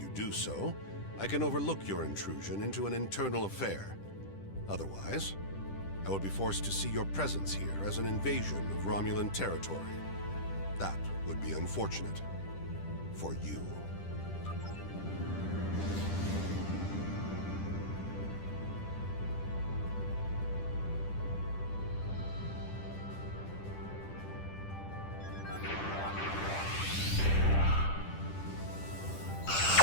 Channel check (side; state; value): right; late; 10 ms